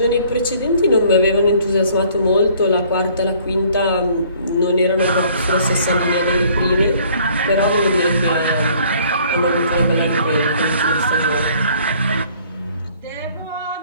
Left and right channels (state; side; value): inverted; both; correlation -0.58